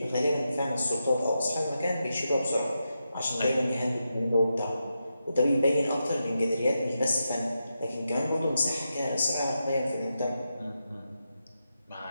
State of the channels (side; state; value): both; inverted; correlation -0.87